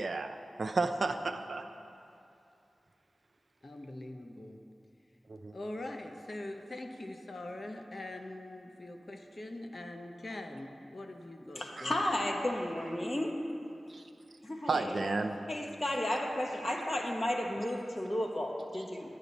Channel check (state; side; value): normal; both; correlation 0.93